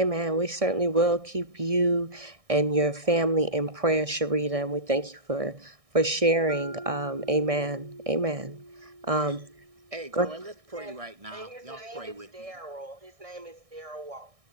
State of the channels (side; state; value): left; late; 1.6 ms